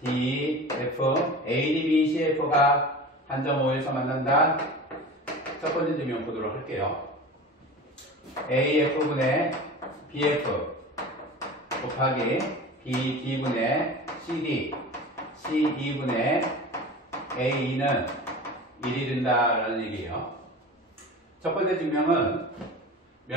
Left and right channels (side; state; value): both; normal; correlation 0.34